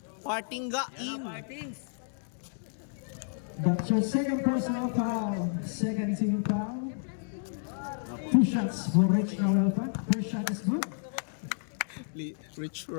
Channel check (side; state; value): right; silent; digital silence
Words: Partingga in. Martins. That's your second personal foul. Second team foul. 2 shots for Rich Nahuelpa. First shot is good. Rich